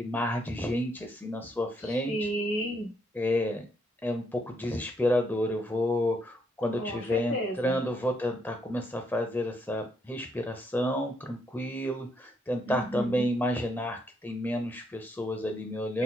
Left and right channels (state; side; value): normal; both; correlation 0.74